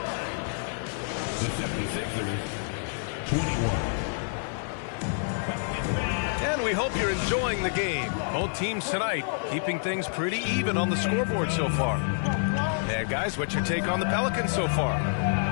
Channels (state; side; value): silent; right; 55 dB below the other